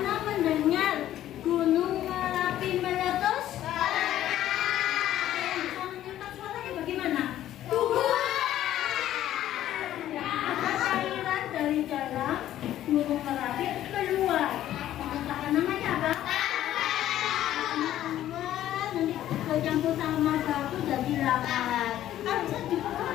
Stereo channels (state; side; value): quieter; right; 12.6 dB